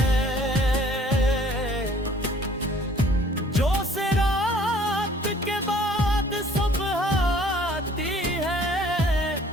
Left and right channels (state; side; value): normal; both; correlation 0.55